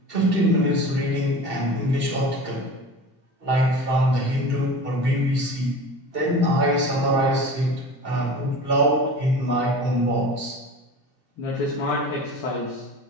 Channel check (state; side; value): late; left; 2.7 ms